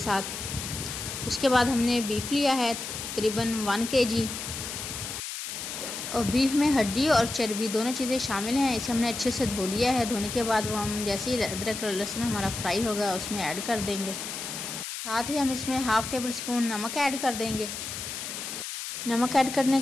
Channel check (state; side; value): noise; left; hiss, 6 dB below the sound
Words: उसके बाद हमने बीफ लिया है तकरीबन 1 kg और बीफ में हड्डी और चर्बी दोनों चीज़ें शामिल हैं। इसे हमने अच्छे से धो लिया है। धोने के बाद वो हम जैसे ही अदरक और लहसुन हमारा फ्राई होगा उसमें ऐड कर देंगे। साथ ही हम इसमें 1/2 टेबल स्पून नमक ऐड कर देंगे। नमक ऐड करने